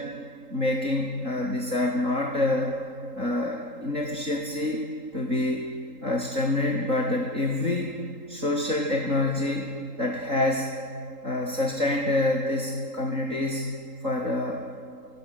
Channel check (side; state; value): left; late; 3.8 ms